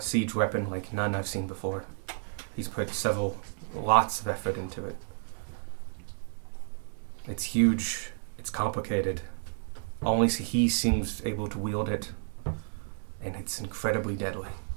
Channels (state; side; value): silent; left; 57 dB below the other